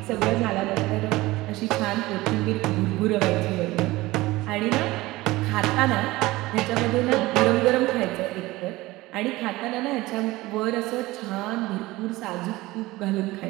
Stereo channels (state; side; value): quieter; left; 19.4 dB